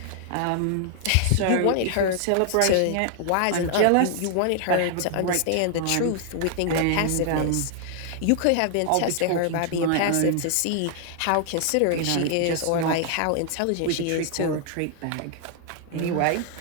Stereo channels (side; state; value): both; different; correlation 0.00